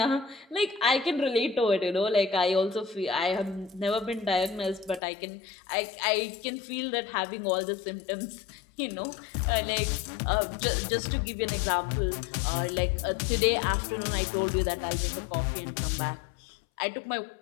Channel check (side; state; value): right; drops out; at 5.0 s